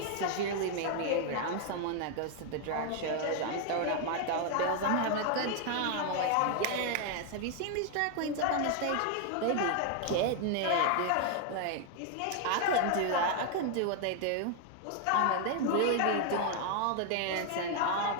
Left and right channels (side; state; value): both; different; correlation 0.00